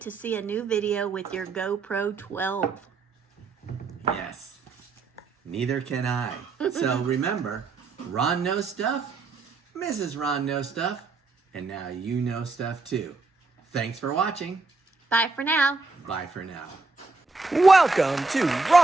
to see a new video with your GoPro 12. Yes. Neither can I. So remember, Ron knows stuff, Mrs. Ron knows stuff, and now you know stuff too. Thanks for watching. Bye for now. Bye for now. Welcome to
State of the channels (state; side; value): quieter; left; 3.9 dB